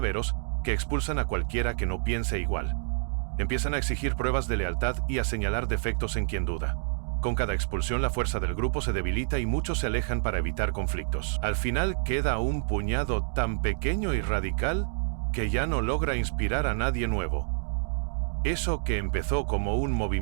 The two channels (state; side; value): silent; left; digital silence